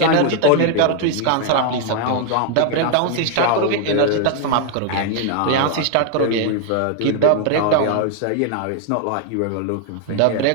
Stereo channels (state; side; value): different; both; correlation 0.00